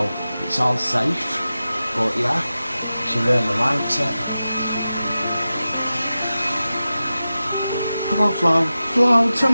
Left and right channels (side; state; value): both; inverted; correlation -0.94